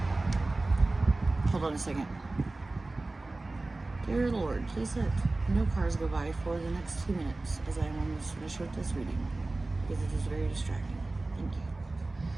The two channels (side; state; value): left; quieter; 3.1 dB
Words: Hold on a second. Dear Lord, please let no cars go by for the next 2 minutes as I am almost finished with this reading, because it is very distracting. Thank